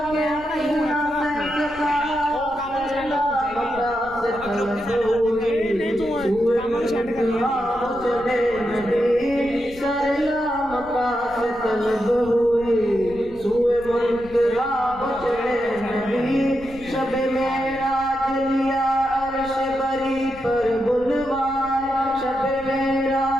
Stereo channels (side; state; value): left; noise; rumble, 19 dB below the sound